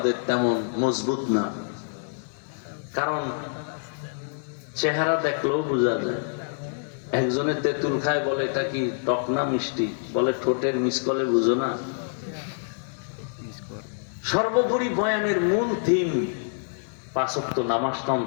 তেমন মজবুত না, কারণ চেহারা দেখলেও বোঝা যায়। একজনে তেঁতুল খায়, বলে এটা কি টক না মিষ্টি? বলে ঠোঁটের মিসকলে বুঝো না। সর্বোপরি বয়ানের মূল থিম, 5 ওয়াক্ত নামাজটা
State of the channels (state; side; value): silent; right; digital silence